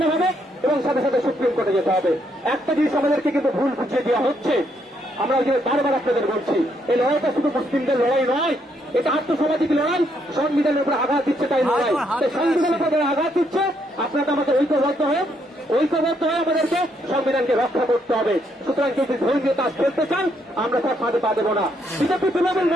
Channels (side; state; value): both; normal; correlation 0.74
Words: এবং সাথে সাথে সুপ্রিম কোর্টে যেতে হবে। একটা জিনিস আমাদেরকে কিন্তু ভুল বুঝিয়ে দেওয়া হচ্ছে, আমরা ওই যে বারবার আপনাদের বলছি, এই লড়াইটা শুধু মুসলিমদের লড়াই নয়, এটা আত্মসামাজিক লড়াই। সংবিধানের উপরে আঘাত দিচ্ছে তাই লড়াই, সংবিধানের উপরে আঘাত দিচ্ছে। আপনারা আমাদের ঐক্যবদ্ধ হয়ে আমাদেরকে সংবিধানকে রক্ষা করতে হবে। সুতরাং যদি ধর্মীয় কাজ করতে চান, আমরা তার ফাঁদে পা দেবো না। বিজেপি তৃণমূল